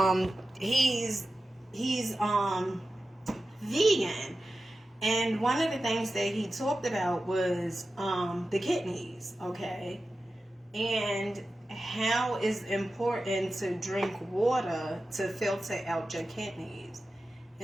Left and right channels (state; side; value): normal; both; correlation 0.93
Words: he's vegan. And one of the things that he talked about was the kidneys, okay? And how it's important to drink water to filter out your kidneys.